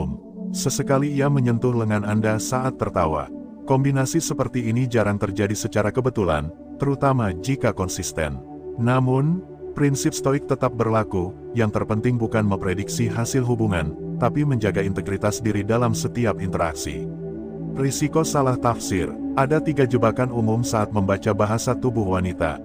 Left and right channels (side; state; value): both; identical; correlation 1.00